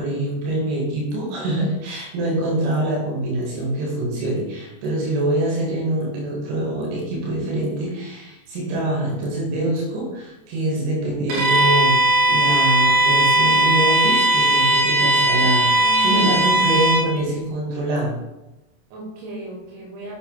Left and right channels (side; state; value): left; late; 27 ms